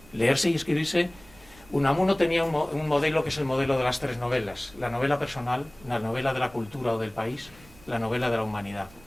leerse y escribirse. Unamuno tenía un modelo que es el modelo de las 3 novelas: la novela personal, la novela de la cultura o del país, la novela de la humanidad.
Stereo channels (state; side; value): noise; right; rumble, 24 dB below the sound